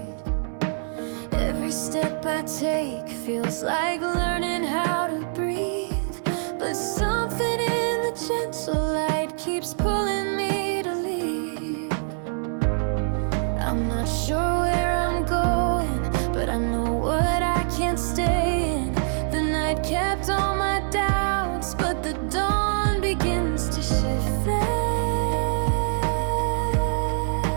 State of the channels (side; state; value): left; silent; 62 dB below the other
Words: Every step I take feels like learning how to breathe, but something in the gentle light keeps pulling me to leave. I'm not sure where I'm going, but I know what I can't stay in. The night kept all my doubts, but the dawn begins to shift them.